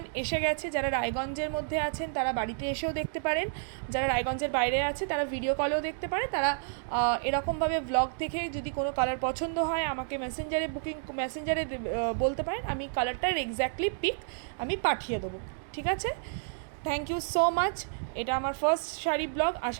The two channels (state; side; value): silent; left; digital silence